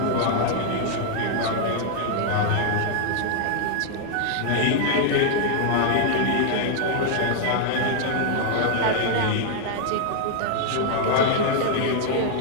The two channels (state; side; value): different; both; correlation 0.00